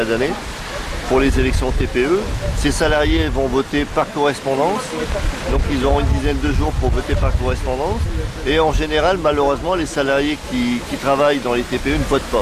d'année pour les élections TPE. Ces salariés vont voter par correspondance, donc ils auront une dizaine de jours pour voter par correspondance. Et en général, malheureusement, les salariés qui travaillent dans les TPE ne votent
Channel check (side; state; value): both; identical; correlation 1.00